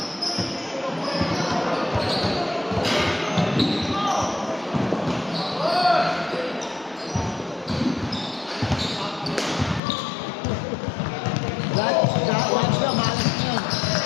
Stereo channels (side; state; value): right; drops out; at 9.8 s